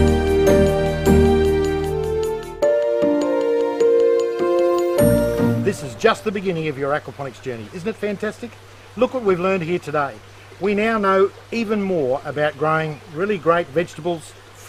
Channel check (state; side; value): identical; both; correlation 1.00